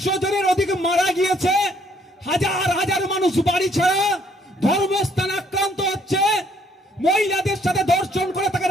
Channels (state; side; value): normal; both; correlation 0.65